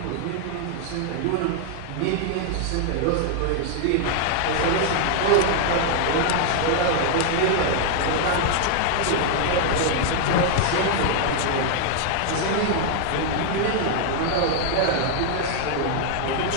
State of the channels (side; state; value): both; different; correlation 0.00